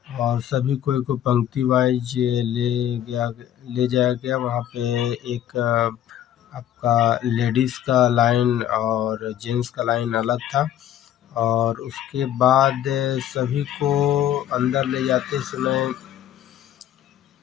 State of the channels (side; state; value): right; quieter; 11.2 dB